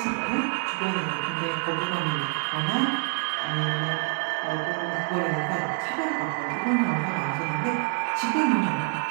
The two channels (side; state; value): left; quieter; 39.4 dB